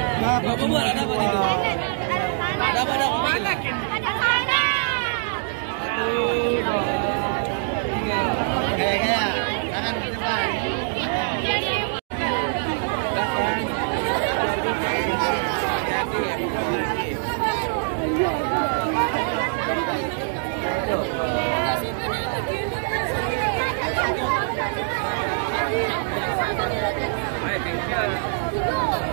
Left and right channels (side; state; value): left; silent; 63 dB below the other